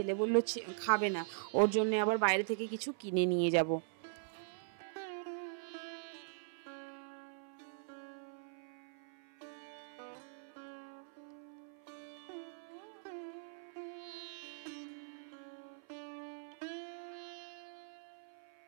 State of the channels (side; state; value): left; silent; 50 dB below the other